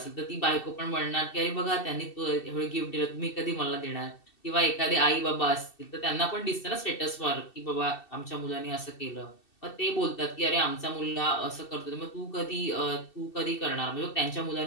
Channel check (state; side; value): late; right; 2.7 ms